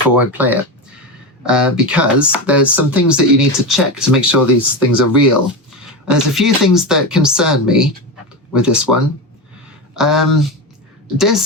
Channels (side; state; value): both; normal; correlation 0.18